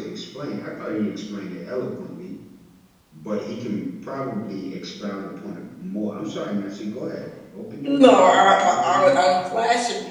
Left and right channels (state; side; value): identical; both; correlation 1.00